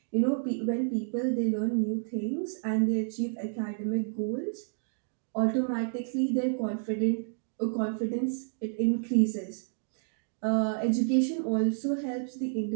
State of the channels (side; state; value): left; silent; digital silence